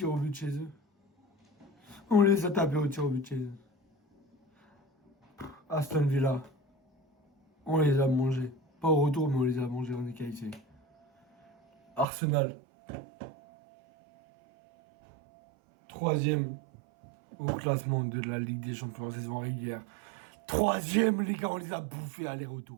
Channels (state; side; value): drops out; left; at 12.1 s